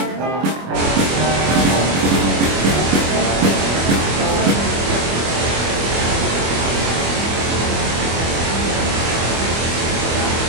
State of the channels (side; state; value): left; late; 25 ms